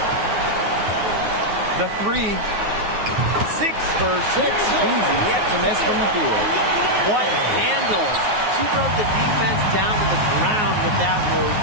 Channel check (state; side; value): late; left; 9.5 ms